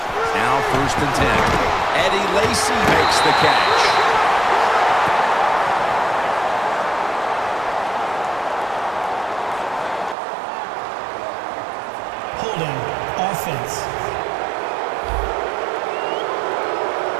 Now 1st and 10. Eddie Lacy makes the catch. Holding offense.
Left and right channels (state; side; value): drops out; left; at 10.2 s